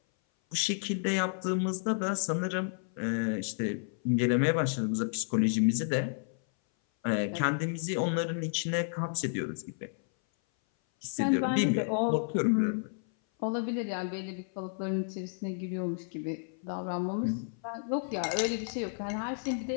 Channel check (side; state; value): right; silent; 56 dB below the other